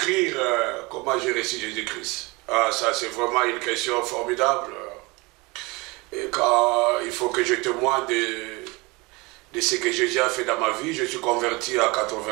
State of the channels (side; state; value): left; quieter; 25.4 dB